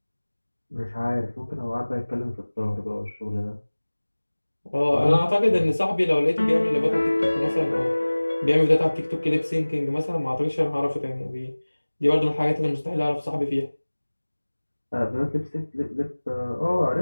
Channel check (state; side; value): inverted; both; correlation -1.00